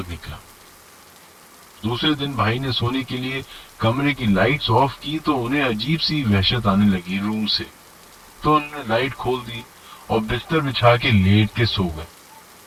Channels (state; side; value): identical; both; correlation 1.00